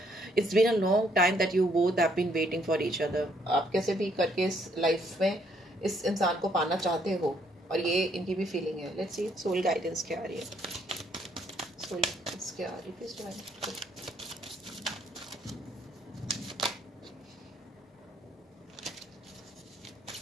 it's been a long time that you both have been waiting for each other. आप कैसे भी करके इस लाइफ में इस इंसान को पाना चाहते हो और ये इनकी भी फीलिंग है। लेट्स सी सोल गाइडेंस क्या आ रही है, सोल गाइडेंस क्या आ रही है please divine.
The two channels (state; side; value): normal; both; correlation 0.69